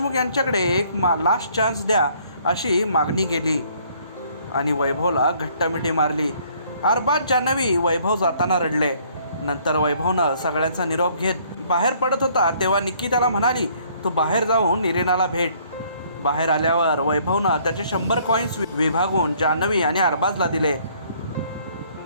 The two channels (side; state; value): both; inverted; correlation -0.62